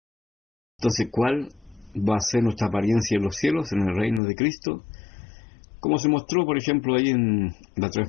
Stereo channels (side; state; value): right; drops out; at 4.2 s